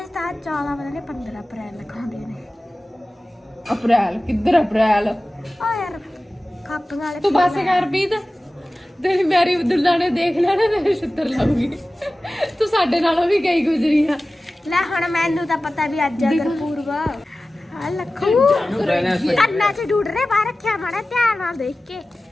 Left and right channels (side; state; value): both; normal; correlation 0.96